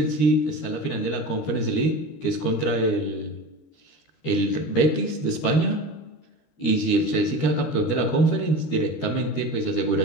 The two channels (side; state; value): right; late; 13 ms